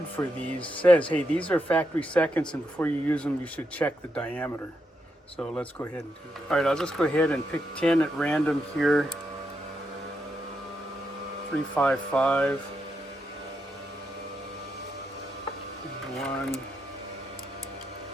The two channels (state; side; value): normal; both; correlation 0.82